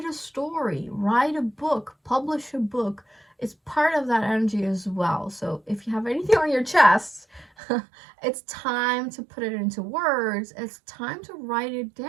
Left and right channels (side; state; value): left; drops out; at 7.5 s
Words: a story, write a book, publish a book, it's part of that energy as well. So if you have anything on your chest, it's time to put it into words. It's time to write it